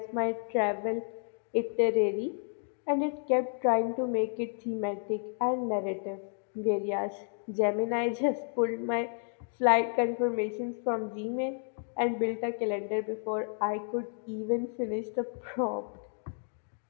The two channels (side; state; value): right; silent; 57 dB below the other